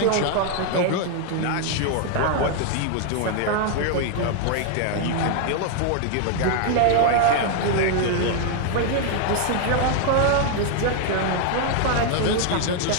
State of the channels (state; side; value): different; both; correlation 0.00